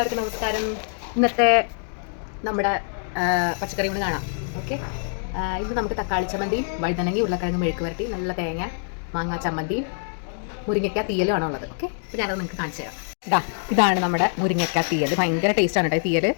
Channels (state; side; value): silent; right; digital silence